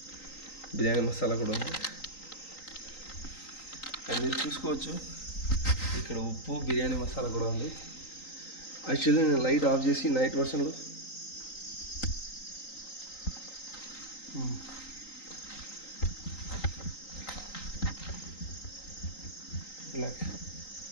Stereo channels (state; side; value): late; right; 3.9 ms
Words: బిర్యానీ మసాలా కూడా ఉంది. అండ్ మీరు చూసుకోవచ్చు ఇక్కడ ఉప్పు, బిర్యానీ మసాలా కూడా ఉంది. యాక్చువల్లీ నేను లైట్ ఆఫ్ చేసి నైట్ వర్షన్లో